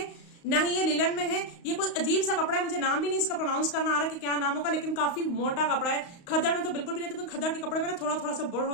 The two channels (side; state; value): right; late; 35 ms